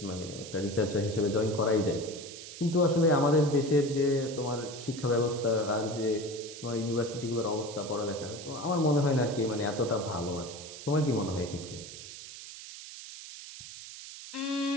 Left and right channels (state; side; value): noise; right; hiss, 13 dB below the sound